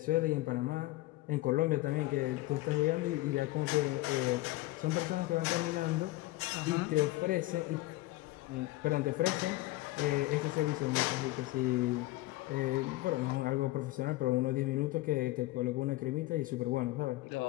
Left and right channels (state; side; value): quieter; right; 18.5 dB